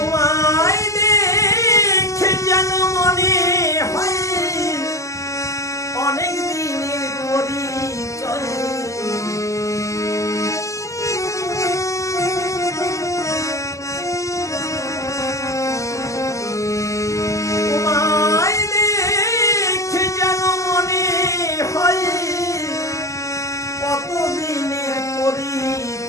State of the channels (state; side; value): late; right; 0.16 ms